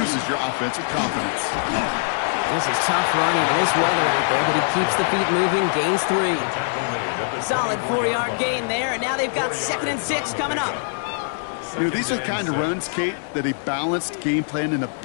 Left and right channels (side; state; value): right; silent; 60 dB below the other